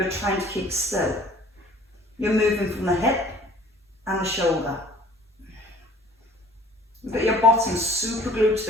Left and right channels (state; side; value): normal; both; correlation 0.51